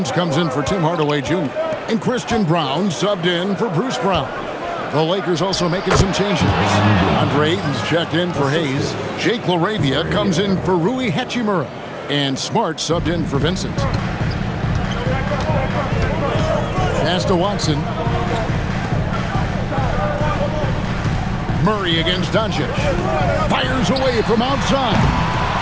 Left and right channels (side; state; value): both; identical; correlation 1.00